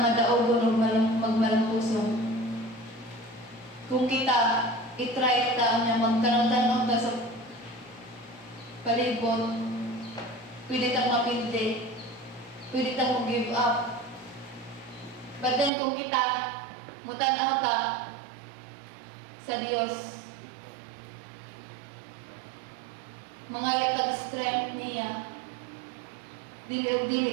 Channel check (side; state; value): left; drops out; at 15.7 s